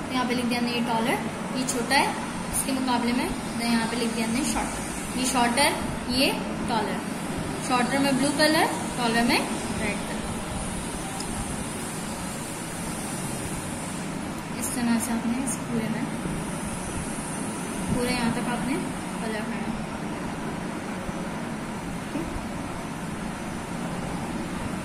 यहाँ पे लिख दिया हमने ये टॉलर, ये छोटा है इसके मुकाबले में, तो यहाँ पे लिख दिया हमने शॉर्टर। ये शॉर्टर ये टॉलर, शॉर्टर में ब्लू कलर, टॉलर में रेड कलर। इस तरह से आपने इस पूरे में पूरे यहाँ तक आपने कलर करना।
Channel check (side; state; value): both; identical; correlation 1.00